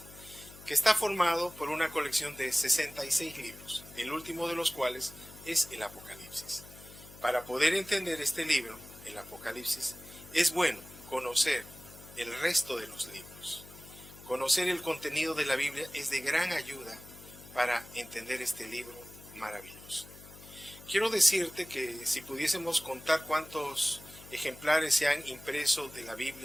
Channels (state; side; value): noise; left; hum, 18 dB below the sound